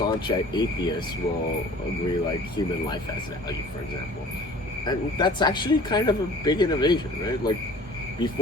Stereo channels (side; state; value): both; normal; correlation 0.48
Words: atheists will agree like human life has value, for example. And that's actually kind of a big innovation, right? Like